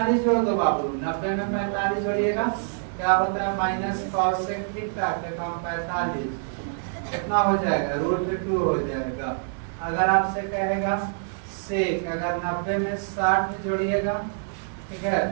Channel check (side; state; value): left; silent; digital silence